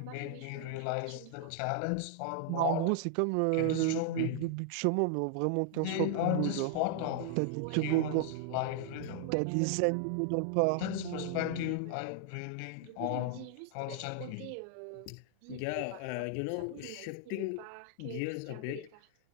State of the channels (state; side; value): different; both; correlation 0.00